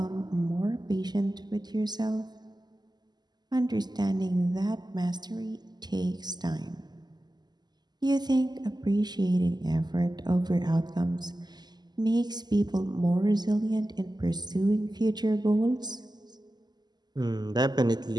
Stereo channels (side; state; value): left; late; 0.20 ms